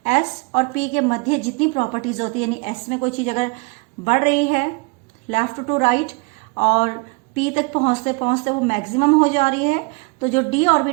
S और P के मध्य जितनी प्रॉपर्टीज होती है, यानी S में कोई चीज अगर बढ़ रही है लेफ्ट टू राइट और P तक पहुंचते पहुंचते वो मैक्सिमम हो जा रही है, तो जो D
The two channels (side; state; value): left; quieter; 29.9 dB